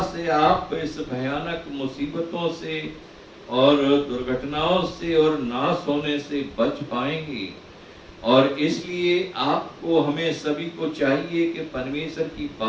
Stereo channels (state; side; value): identical; both; correlation 1.00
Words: से आप इस भयानक मुसीबतों से और दुर्घटनाओं से और नाश होने से बच पाएंगे। और इसलिए आपको हमें सभी को चाहिए कि परमेश्वर की